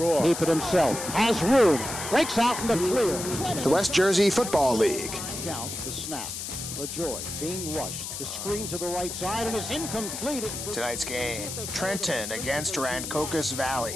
Keep it himself. Has room. Breaks out in the clear. the West Jersey Football League. Count the snap. LaJoy being rushed. The screen to the right side and it's incomplete. Tonight's game, Trenton against Rancocas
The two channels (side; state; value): left; noise; hiss, 6 dB below the sound